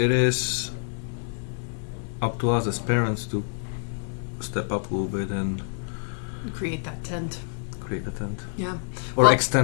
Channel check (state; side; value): silent; right; 60 dB below the other